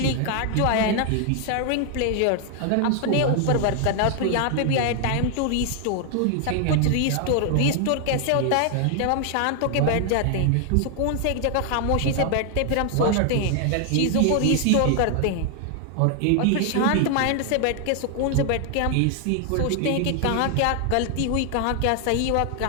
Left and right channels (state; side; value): different; both; correlation 0.00